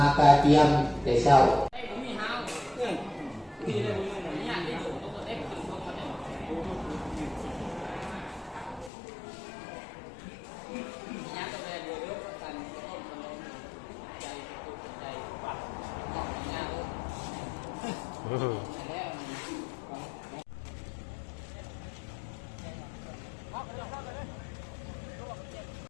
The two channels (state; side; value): drops out; right; at 8.9 s